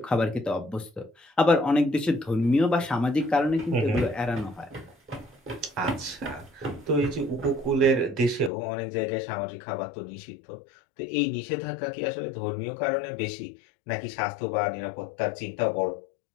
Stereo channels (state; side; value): drops out; right; at 8.5 s